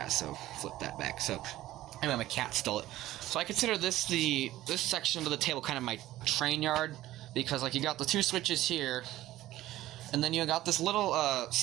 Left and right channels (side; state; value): left; quieter; 15.3 dB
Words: so flip that back. So anyway, my cat stole it. So I consider this section of the table kind of my train yard, because like you got the 2 switches here, and then you got this little